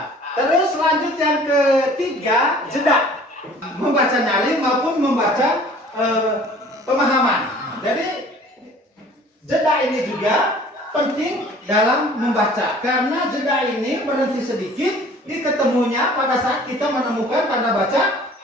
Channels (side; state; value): both; normal; correlation 0.50